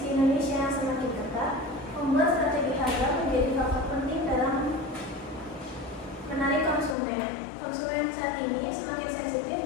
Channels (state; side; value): drops out; right; at 7.0 s